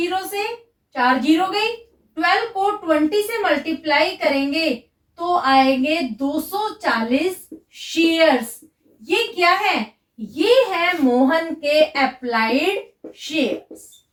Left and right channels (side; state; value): both; identical; correlation 1.00